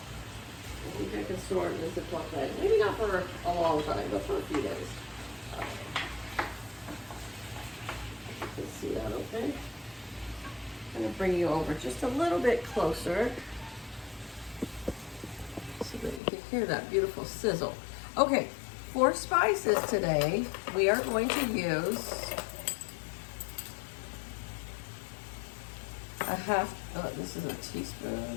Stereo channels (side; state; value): right; drops out; at 16.2 s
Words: I think I can store it in a Ziploc bag. Maybe not for a long time, but for a few days. You can see that okay? I'm gonna bring you over just a little bit closer so that you can hear that beautiful sizzle. Okay, for spices today, we are going to use a half, oh, this is a